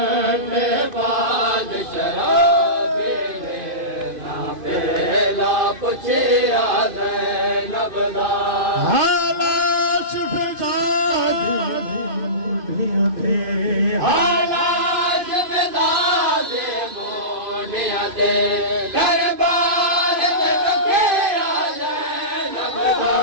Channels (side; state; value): left; late; 2.5 ms